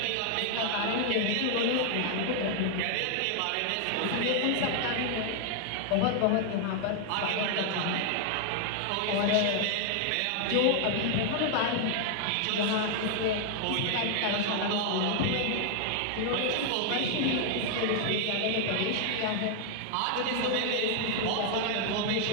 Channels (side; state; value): both; different; correlation 0.00